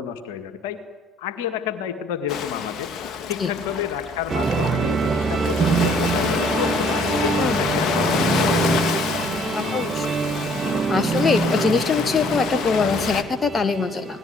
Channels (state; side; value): normal; both; correlation 0.60